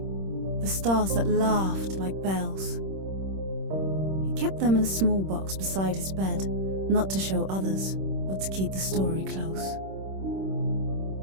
the stars that laughed like bells. He kept them in a small box beside his bed, not to show others, but to keep the story close.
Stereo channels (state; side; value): late; left; 26 ms